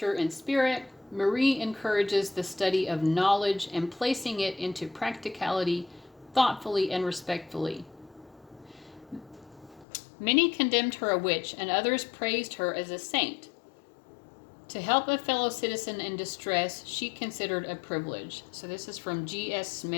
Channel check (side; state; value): right; drops out; at 9.9 s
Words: in spirit, Marie encourages the study of knowledge and placing it into practicality thoughtfully and respectfully. Many condemned her a witch and others praised her as a saint. To help a fellow citizen in distress, she considered a privilege. So this is from G.S.